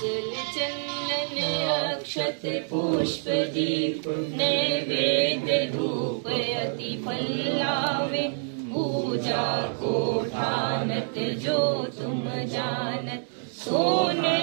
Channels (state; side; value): silent; left; 60 dB below the other